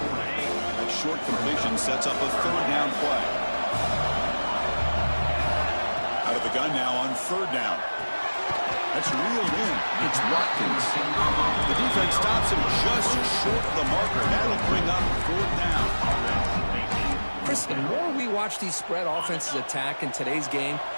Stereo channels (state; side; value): inverted; both; correlation -1.00